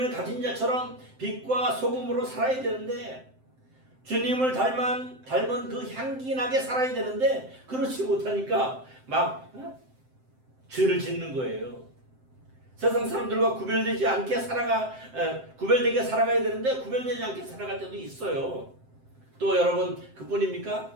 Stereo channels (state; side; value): late; left; 7.7 ms